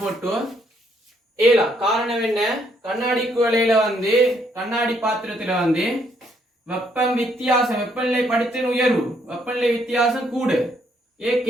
போட்டு ஏலாம். காரணம் என்ன? கண்ணாடி குவளையில கண்ணாடி பாத்திரத்துல வெப்பம் வித்தியாசம், வெப்பநிலை படித்தின் உயர்வு, வெப்பநிலை வித்தியாசம் கூடு,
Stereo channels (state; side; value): normal; both; correlation 0.71